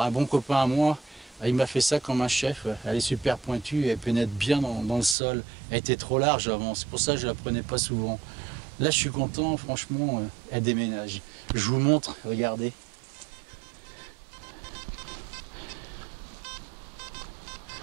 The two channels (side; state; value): left; drops out; at 5.2 s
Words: un bon copain à moi. Il m'a fait ça comme un chef, elle est super pointue, elle pénètre bien dans le sol. Elle était trop large avant, c'est pour ça que je la prenais pas souvent. Là je suis content, franchement, elle déménage. Je vous montre, regardez.